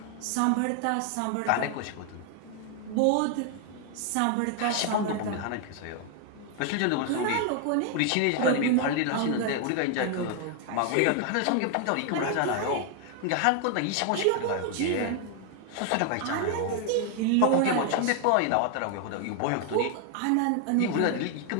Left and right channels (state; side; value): different; both; correlation 0.00